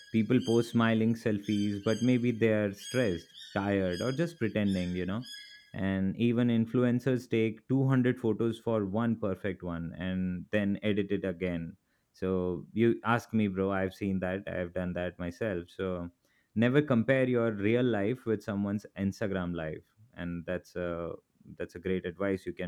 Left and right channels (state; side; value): identical; both; correlation 1.00